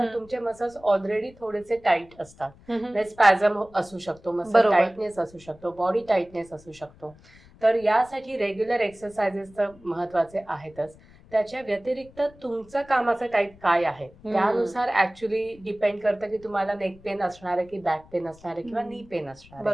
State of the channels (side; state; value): left; noise; rumble, 24 dB below the sound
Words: तुमचे मसल्स ऑलरेडी थोडेसे टाईट असतात. स्पॅझम असू शकतो, मसल बरोबर. टाईटनेस असू शकतो, बॉडी टाईटनेस असू शकतो. तर यासाठी रेग्युलर एक्सरसाइजेस तर महत्वाचे आहेतच. त्याच्या व्यतिरिक्त तुमचं कामाचं टाईप काय आहे त्यानुसार ऍक्च्युली डिपेंड करतं की तुम्हाला नेक पेन असणार आहे की बॅक पेन असणार आहे किंवा नी पेन असणार आहे.